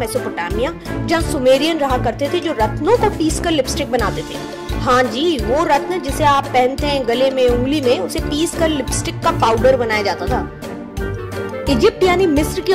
जहाँ सुमेरियन रहा करते थे जो रत्नों को पीसकर लिपस्टिक बनाते थे। हाँ जी, वो रत्न जिसे आप पहनते हैं गले में, उंगली में, उसे पीसकर लिपस्टिक का पाउडर बनाया जाता था। इजिप्ट यानी मिस्र की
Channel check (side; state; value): both; identical; correlation 1.00